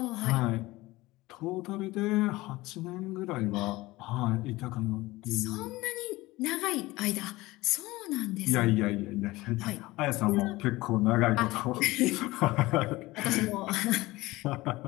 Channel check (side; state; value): right; quieter; 19.6 dB